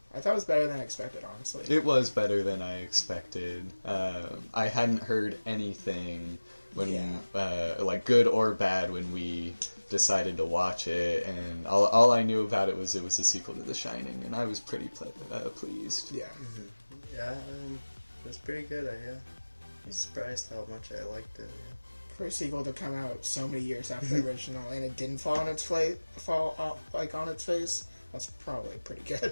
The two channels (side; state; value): both; inverted; correlation -1.00